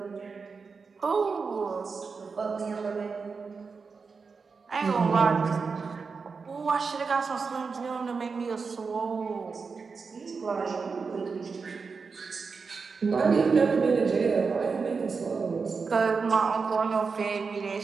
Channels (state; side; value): quieter; left; 4.9 dB